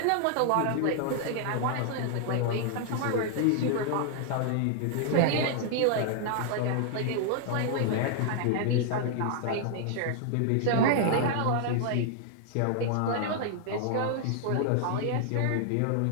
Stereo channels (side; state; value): both; different; correlation 0.00